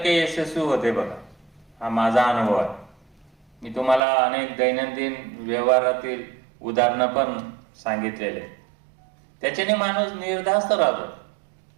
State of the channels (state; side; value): drops out; left; at 4.0 s